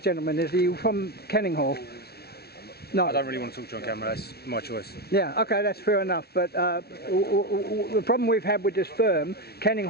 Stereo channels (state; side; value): late; right; 0.46 ms